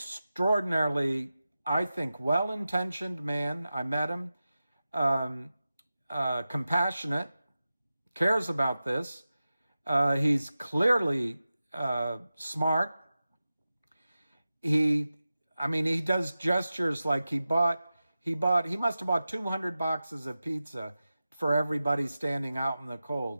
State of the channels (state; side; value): inverted; both; correlation -0.94